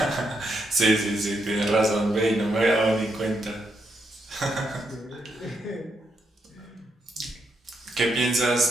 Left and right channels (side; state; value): both; normal; correlation 0.79